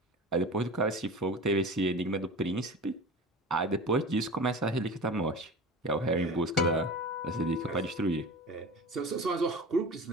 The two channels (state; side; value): normal; both; correlation 0.34